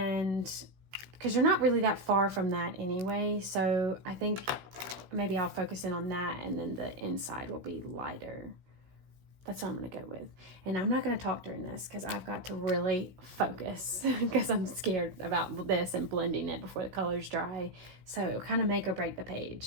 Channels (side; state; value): left; late; 16 ms